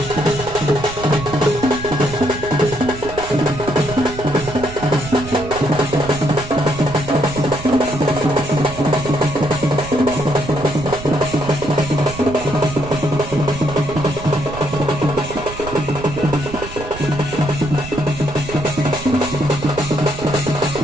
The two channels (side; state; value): right; noise; rumble, 12 dB below the sound